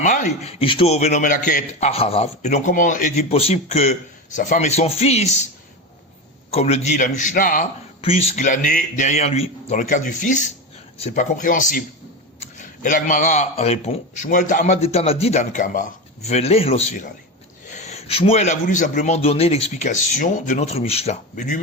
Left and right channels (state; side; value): normal; both; correlation 0.20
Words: Ishto Venomelaket Acharav. Et donc comment est-il possible que sa femme et son fils, comme le dit la Mishnah, puissent glaner derrière lui? Dans le cas du fils, c'est pas compréhensible. Et la Gemara répond, Shmuel ta'amad etanadi dan kamar, veleh lo svirale. Shmuel a voulu simplement donner l'explication de notre Mishnah. Mais